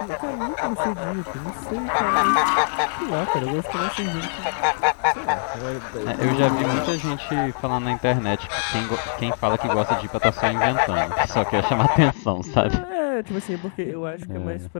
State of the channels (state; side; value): silent; right; digital silence